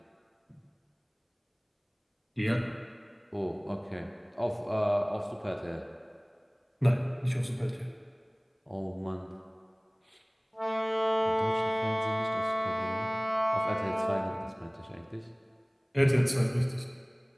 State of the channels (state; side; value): identical; both; correlation 1.00